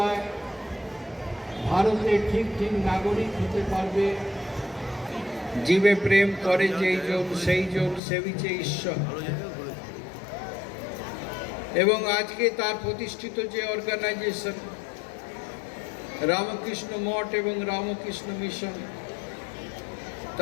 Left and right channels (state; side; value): drops out; right; at 8.0 s